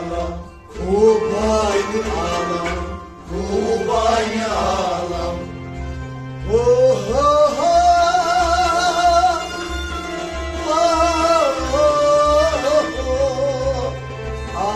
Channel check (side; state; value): both; identical; correlation 1.00